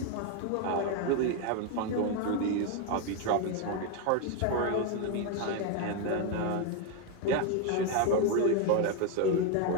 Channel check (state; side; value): different; both; correlation 0.01